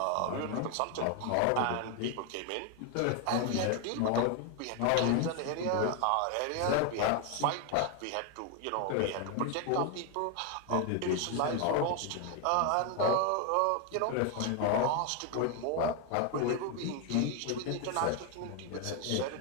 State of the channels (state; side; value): different; both; correlation 0.01